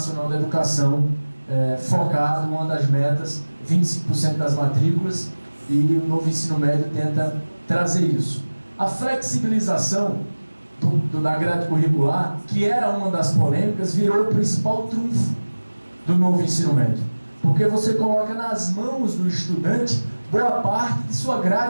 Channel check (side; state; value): both; inverted; correlation -1.00